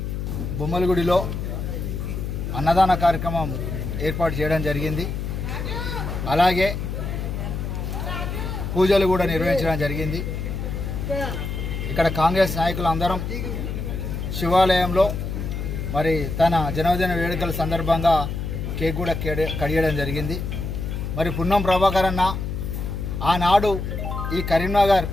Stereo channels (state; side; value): noise; left; hum, 4 dB below the sound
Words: బొమ్మలగుడిలో అన్నదాన కార్యక్రమం ఏర్పాటు చేయడం జరిగింది. అలాగే పూజలు కూడా నిర్వహించడం జరిగింది. ఇక్కడ కాంగ్రెస్ నాయకులు అందరం శివాలయంలో మరి తన జన్మదిన వేడుకల సందర్భంగా కేక్ కూడా కడియడం జరిగింది. మరి పున్నం ప్రభాకర్ అన్న ఆనాడు ఈ కరీంనగర్